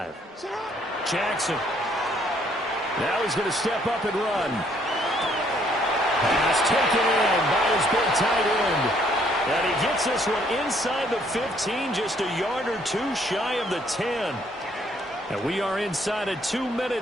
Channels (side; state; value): both; normal; correlation 0.66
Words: Jackson. Now he's going to step up and run. Pass taken in by his big tight end. And he gets this one inside the 15, just a yard or 2 shy of the 10. And we are inside of 2